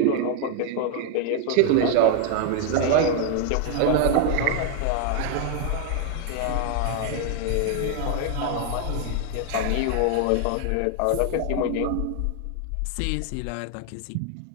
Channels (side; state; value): both; different; correlation 0.01